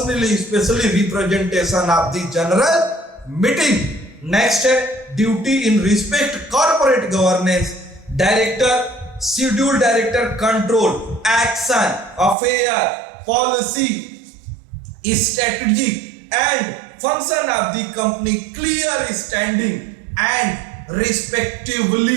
specially representation of the general meeting. Next है duty in respect corporate governance. Director, schedule director control, action, affair, policy, strategy and function of the company, clear standing and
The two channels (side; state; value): left; drops out; at 12.4 s